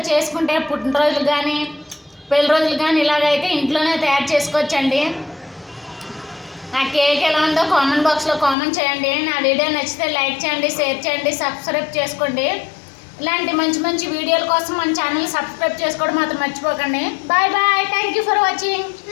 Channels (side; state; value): right; drops out; at 8.6 s